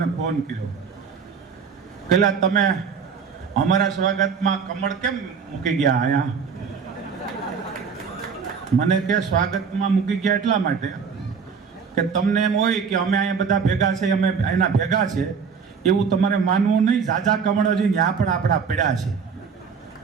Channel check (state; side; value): quieter; left; 6.0 dB